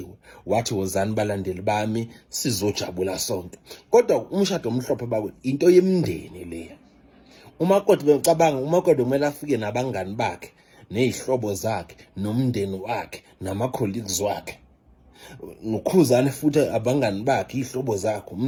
wathi wozani balandeli bami sizojabula sonke. Kodwa umshado omhlophe bakwe into yemndeni leya. uMakoti becabanga uMakoti kumele afike nabangani bakhe ney'hlobo zakhe nomndeni wakhe nama-colleagues wakhe. NoKhuzani futhi abangani bakhe, iy'hlobo zakhe,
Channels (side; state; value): both; identical; correlation 1.00